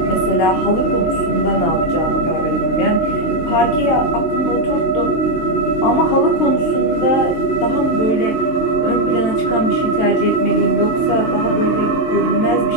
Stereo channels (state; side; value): late; right; 23 ms